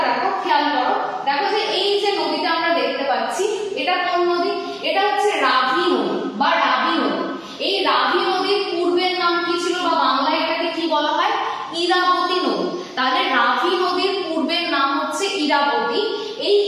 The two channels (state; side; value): identical; both; correlation 1.00